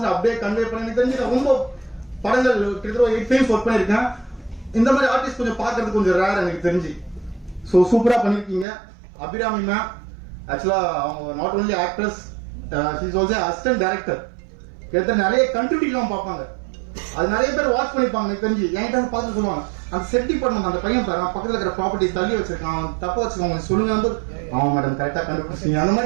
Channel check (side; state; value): left; drops out; at 8.7 s